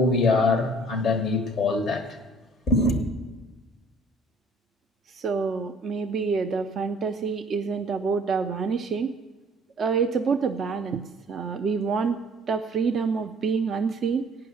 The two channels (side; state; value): both; normal; correlation 0.55